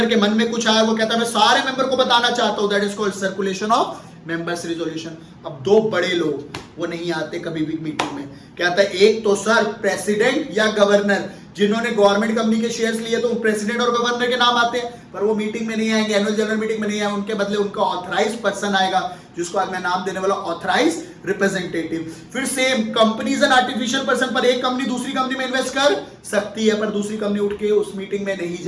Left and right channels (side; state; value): both; identical; correlation 1.00